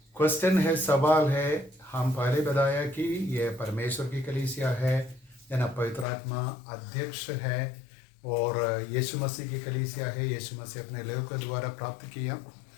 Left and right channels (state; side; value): drops out; right; at 6.1 s